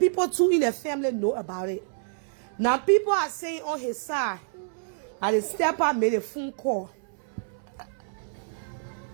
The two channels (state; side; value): silent; left; 60 dB below the other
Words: too in the family know about it. Now people are saying on his side that the stepper made a phone call.